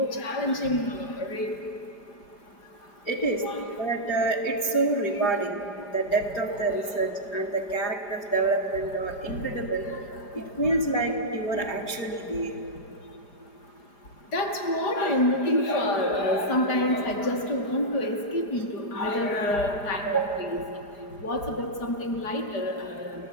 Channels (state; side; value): late; right; 4.9 ms